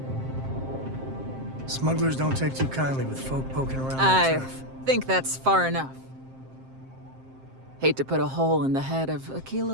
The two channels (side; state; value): left; late; 7.6 ms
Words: Smugglers don't take too kindly with folk poking around their I turf. think that's far enough. Hate to put a hole in the head of